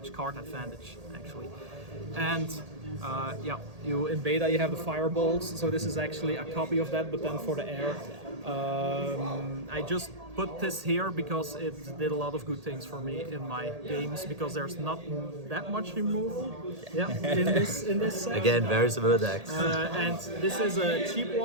card advantage actually. And in beta you have the fireballs, so this is actually a copy of that, but then for the air. I just put this here because it did a lot of good things for me in my games, because there's not that much removal in this set. Again, very similar decks. And this is a cheap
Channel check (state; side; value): late; left; 1.8 ms